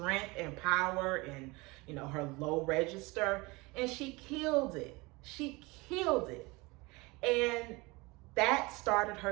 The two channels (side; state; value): left; quieter; 24.3 dB